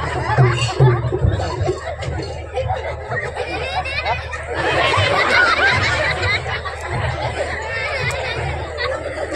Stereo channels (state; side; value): identical; both; correlation 1.00